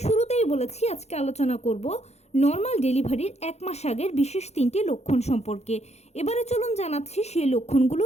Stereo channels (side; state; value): right; late; 0.31 ms